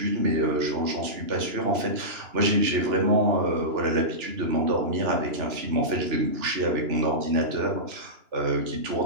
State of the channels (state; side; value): late; left; 2.9 ms